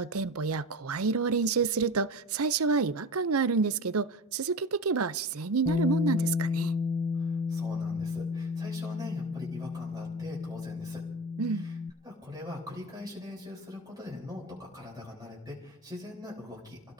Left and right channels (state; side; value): normal; both; correlation 0.28